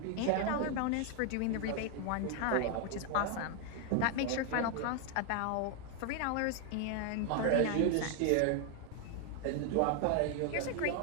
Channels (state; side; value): different; both; correlation 0.01